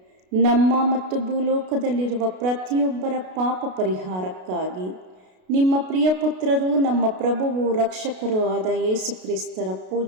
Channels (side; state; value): left; late; 32 ms